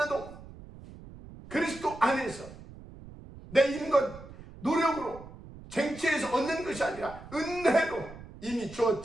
그리스도 안에서 내 힘과 노력으로 쟁취해서 얻는 것이 아니라 은혜로 이미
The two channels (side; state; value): right; noise; rumble, 17 dB below the sound